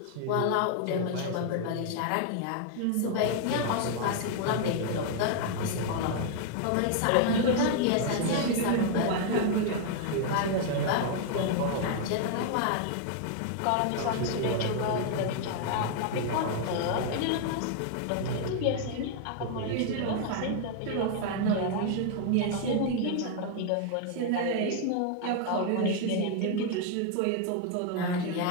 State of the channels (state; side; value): different; both; correlation 0.00